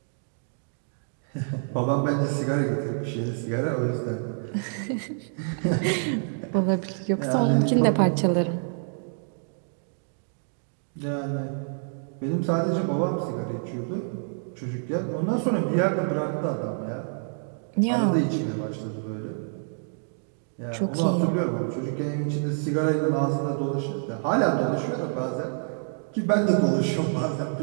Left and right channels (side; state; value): left; silent; digital silence